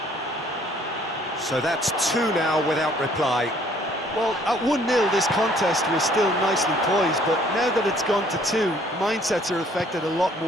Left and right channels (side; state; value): both; normal; correlation 0.60